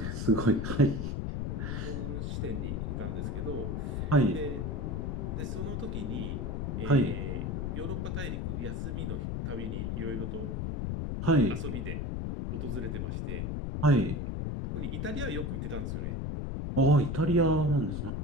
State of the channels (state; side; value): noise; left; rumble, 2 dB below the sound